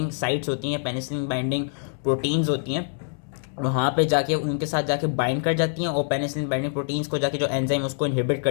साइट्स होती हैं, पेनिसिलिन बाइंडिंग प्रोटीन्स होती हैं, वहाँ पे जाके उनके साथ जाके बाइंड कर जाती हैं और पेनिसिलिन बाइंडिंग प्रोटीन्स को जाके जो एंजाइम उसको इनहिबिट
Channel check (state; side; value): silent; right; digital silence